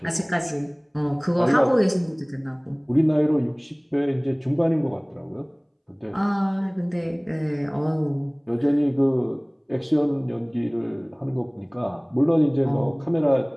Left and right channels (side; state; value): both; identical; correlation 1.00